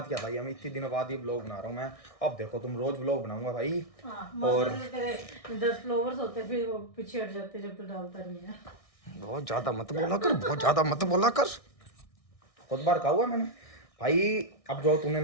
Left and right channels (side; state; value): right; late; 1.6 ms